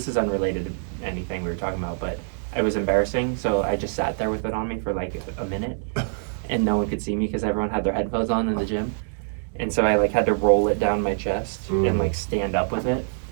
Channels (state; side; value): silent; left; 62 dB below the other